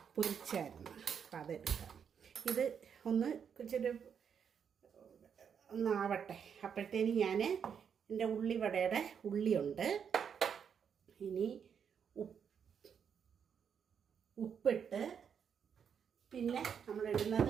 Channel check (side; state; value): left; quieter; 7.4 dB